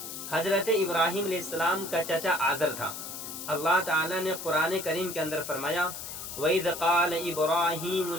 حضرت ابراہیم علیہ السلام کا چچا آزر تھا۔ اللہ تعالیٰ نے قرآن کریم کے اندر فرمایا، وَإِذْ قَالَ إِبْرَاهِيمُ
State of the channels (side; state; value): left; noise; hiss, 8 dB below the sound